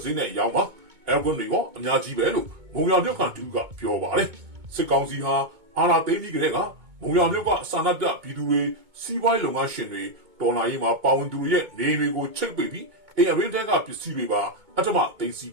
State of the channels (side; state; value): left; late; 2.2 ms